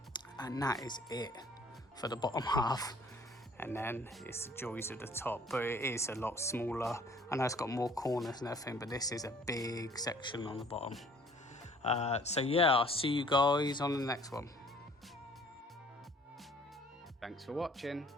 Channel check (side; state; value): both; normal; correlation 0.55